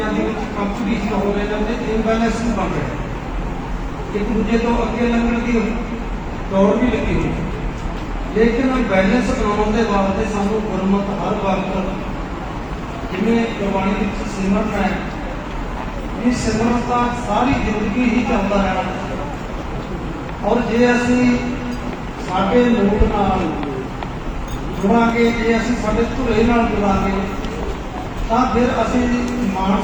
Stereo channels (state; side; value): identical; both; correlation 1.00